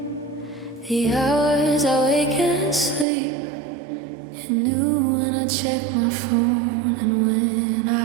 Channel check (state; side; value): drops out; left; at 3.1 s